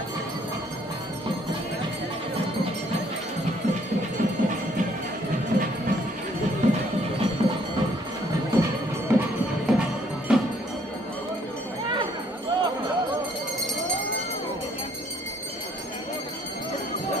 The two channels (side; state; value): both; normal; correlation 0.64